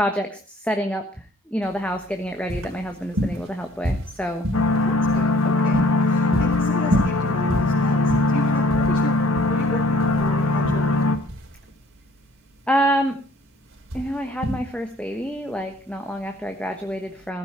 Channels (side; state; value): both; normal; correlation 0.57